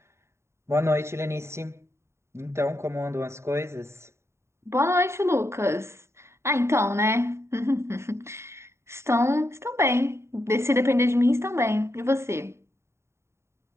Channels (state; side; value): late; left; 0.13 ms